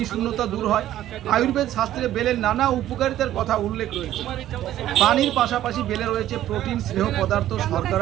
শূন্যতা দূর হয়। আয়ুর্বেদ শাস্ত্রে বেলের নানা উপকারিতার কথা উল্লেখ রয়েছে। পানির পাশাপাশি বেলে রয়েছে প্রোটিন, স্নেহ পদার্থ,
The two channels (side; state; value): left; quieter; 12.9 dB